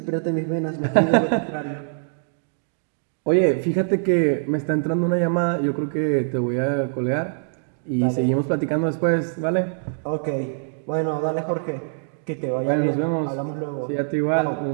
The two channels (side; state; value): left; silent; digital silence